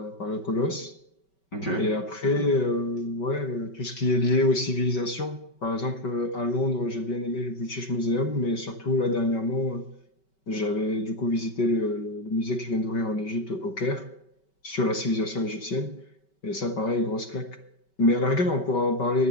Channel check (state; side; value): late; right; 5.2 ms